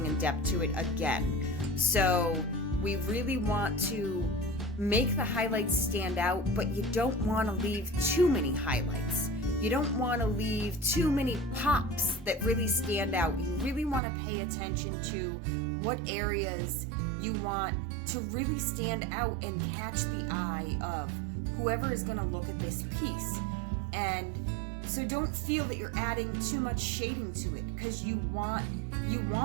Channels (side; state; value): left; drops out; at 14.0 s